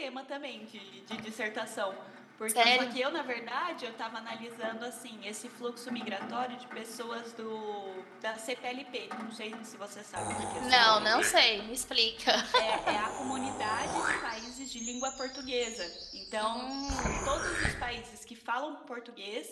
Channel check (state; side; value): identical; both; correlation 1.00